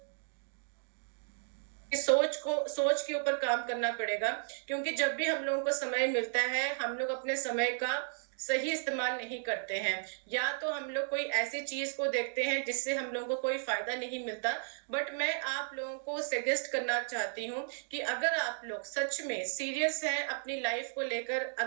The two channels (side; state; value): left; silent; digital silence